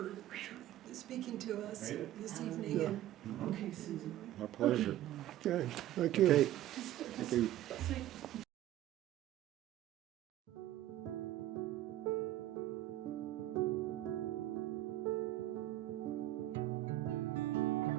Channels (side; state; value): left; quieter; 13.8 dB